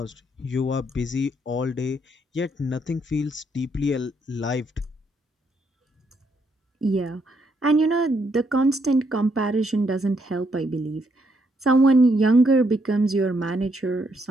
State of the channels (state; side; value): normal; both; correlation 0.74